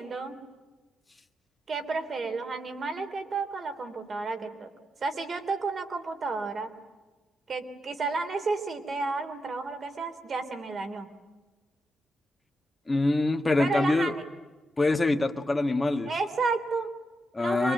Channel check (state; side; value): normal; both; correlation 0.85